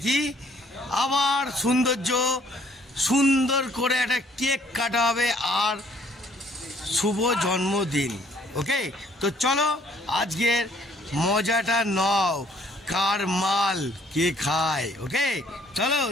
কি, আবার সৌন্দর্য, সুন্দর করে একটা কেক কাটা হবে আর শুভ জন্মদিন। ওকে, তো চলো আজকের মজাটা নাও, কার মাল কে খায়। ওকে চলো,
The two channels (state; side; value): normal; both; correlation 0.62